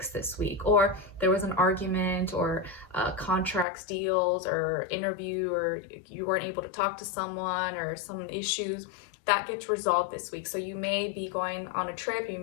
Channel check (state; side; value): drops out; right; at 3.7 s